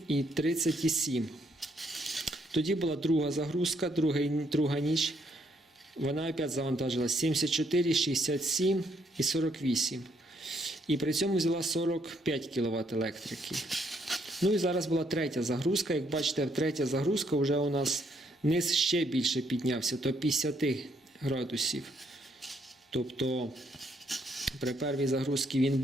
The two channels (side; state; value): both; normal; correlation 0.72